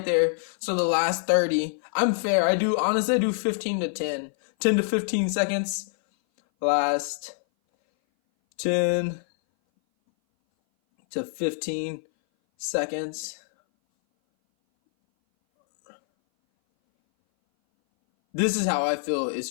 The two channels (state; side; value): silent; right; 59 dB below the other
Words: there. So the last 30, I'm fair. I do 15 to 10 to 15 seconds. Last 10 to 15 seconds. This is how I feel is